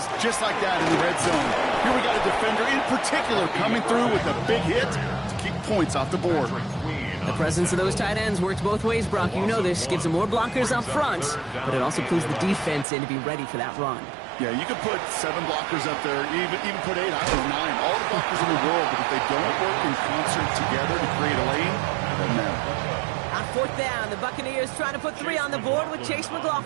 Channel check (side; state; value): left; drops out; at 12.9 s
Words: just like that in the red zone. Here we got a defender in particular coming through with a big hit to keep points off the board. The presence of those tight ends works both ways, Brock. You know this. Gives them more blockers up front, but it also pulls the defense in to be ready for that run. Yeah, you could put 7 blockers up there, even put 8, I don't know, 9, all the blockers in the world, but if they don't work in concert together to create a lane, it doesn't matter. On fourth down, the Buccaneers trying to put 3 on the board with Chase